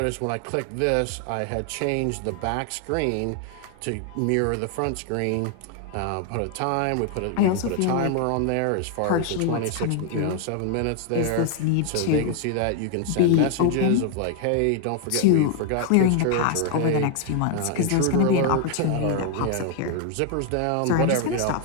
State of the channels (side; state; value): both; different; correlation 0.00